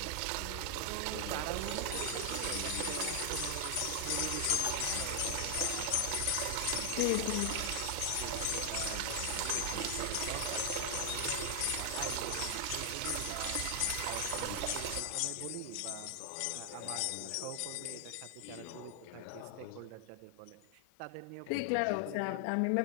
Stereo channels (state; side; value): different; both; correlation 0.00